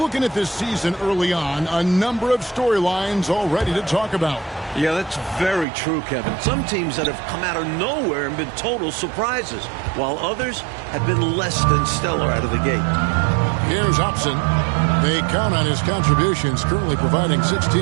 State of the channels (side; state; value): left; drops out; at 5.7 s